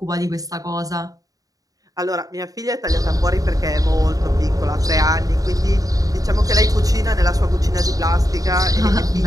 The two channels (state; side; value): late; left; 0.17 ms